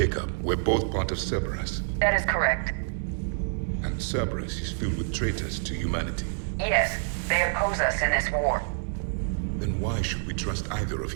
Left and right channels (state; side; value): silent; left; digital silence